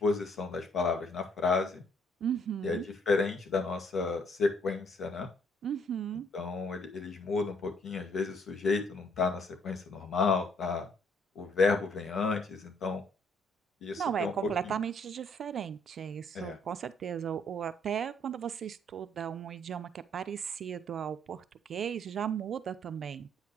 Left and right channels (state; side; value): normal; both; correlation 0.66